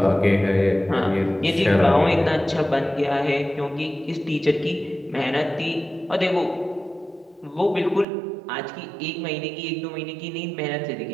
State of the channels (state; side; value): drops out; left; at 8.1 s